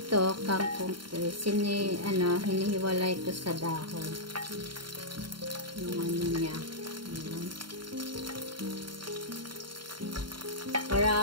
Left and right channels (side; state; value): left; late; 0.73 ms